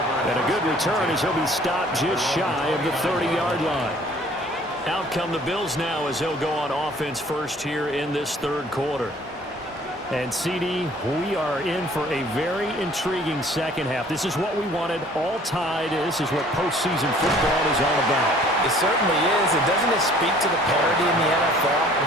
And a good return as he'll be stopped just shy of the 30-yard line. Out come the Bills now as they'll go on offense first here in this third quarter. And, CD, we are in for a very intriguing second half. This is what we wanted, all tied. This is what postseason football is all about. It certainly is. And doesn't it speak to the parity in the NFL?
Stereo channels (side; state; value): both; normal; correlation 0.54